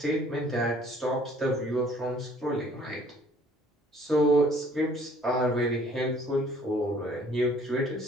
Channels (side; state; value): both; normal; correlation 0.57